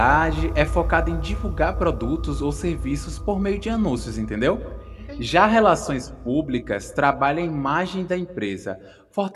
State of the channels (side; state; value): both; identical; correlation 1.00